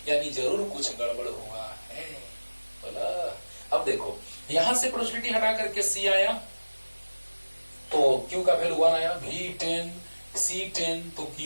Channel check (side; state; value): both; inverted; correlation -1.00